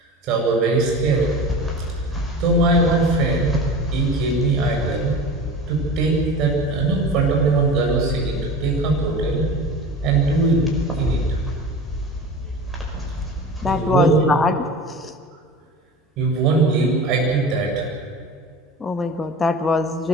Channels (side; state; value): both; normal; correlation 0.34